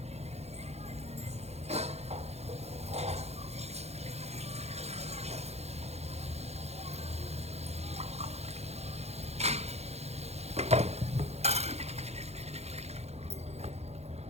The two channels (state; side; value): late; left; 0.31 ms